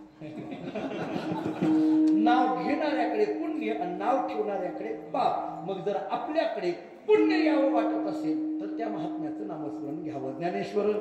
नाव घेणं घेणाऱ्याकडे पुण्य आणि नाव ठेवणाऱ्याकडे पाप. मग जर आपल्याकडे पुण्य यावं वाटत असेल तर त्या महात्म्याचं नामस्मरण घ्यावं. ज्ञानेश्वर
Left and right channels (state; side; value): identical; both; correlation 1.00